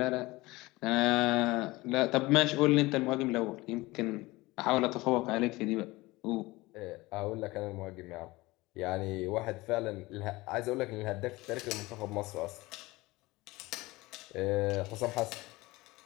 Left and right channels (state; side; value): quieter; right; 20.8 dB